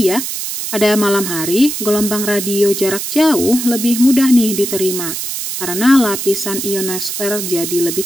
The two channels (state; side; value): noise; right; hiss, 5 dB below the sound